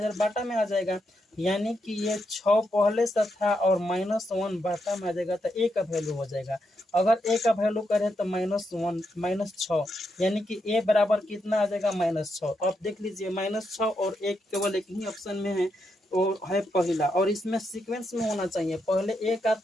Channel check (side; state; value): both; normal; correlation 0.82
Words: बाटा में आ जाएगा, यानी कि ये 6 पहले से था और -1 बाटा में आ जाएगा, तो a का वैल्यू हो जाएगा। अगर a का वैल्यू करें तो -6, यानी कि a बराबर कितना आ जाएगा -6। अब देख लीजिए -6 और 1 केवल एक ही ऑप्शन में है, और है पहला, और इसमें सीक्वेंस में होना चाहिए, पहले a का